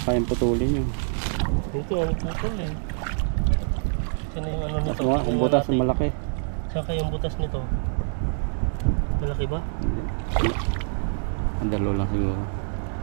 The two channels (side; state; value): left; silent; digital silence